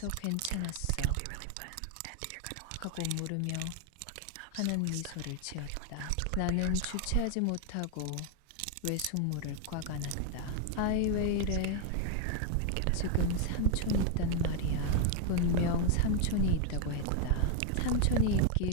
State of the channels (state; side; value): different; both; correlation 0.01